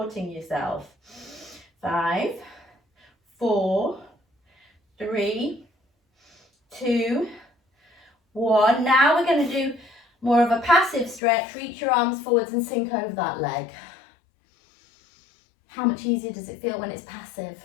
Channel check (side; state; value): right; drops out; at 11.2 s